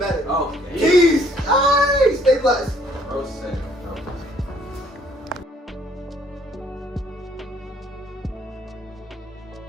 Oh, Peace! Stay blessed. Bro said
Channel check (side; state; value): both; normal; correlation 0.63